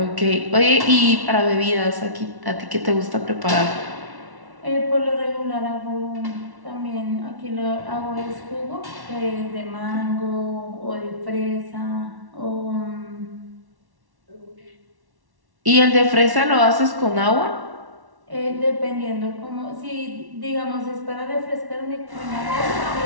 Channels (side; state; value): left; late; 1.1 ms